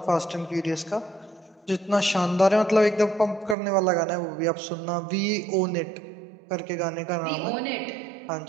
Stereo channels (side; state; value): left; drops out; at 3.6 s